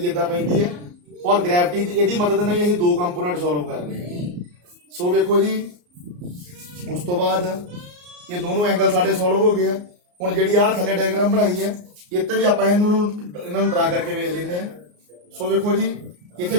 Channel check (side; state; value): left; late; 34 ms